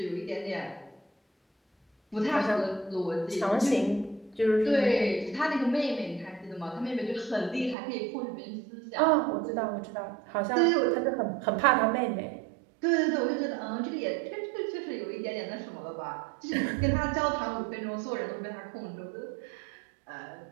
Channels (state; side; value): drops out; left; at 7.8 s